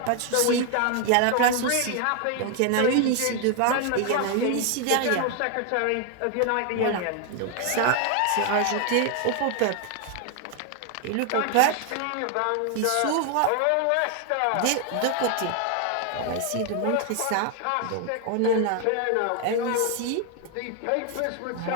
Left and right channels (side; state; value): both; different; correlation 0.01